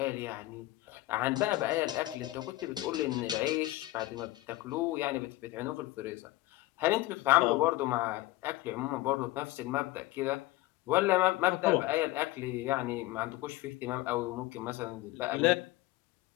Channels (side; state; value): right; quieter; 18.2 dB